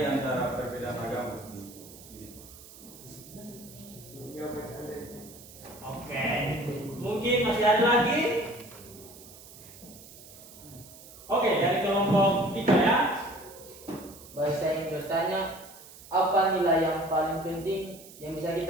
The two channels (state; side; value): noise; right; hiss, 19 dB below the sound